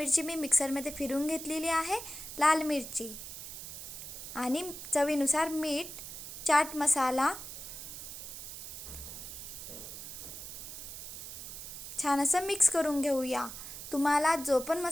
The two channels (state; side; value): noise; right; hiss, 10 dB below the sound